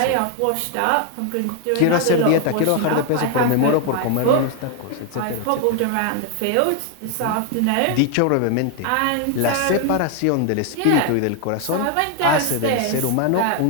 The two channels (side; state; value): both; different; correlation 0.00